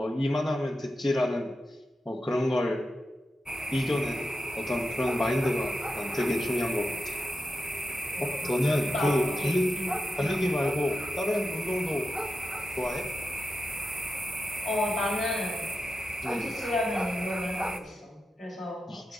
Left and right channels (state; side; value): normal; both; correlation 0.89